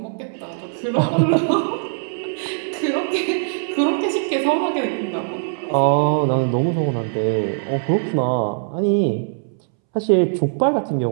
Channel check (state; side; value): silent; left; 65 dB below the other